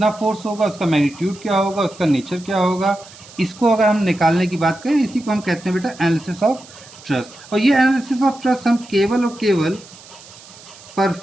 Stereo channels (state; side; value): noise; right; hiss, 20 dB below the sound